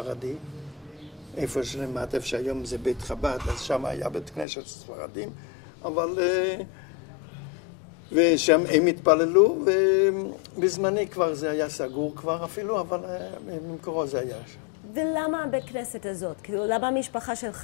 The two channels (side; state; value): right; drops out; at 4.5 s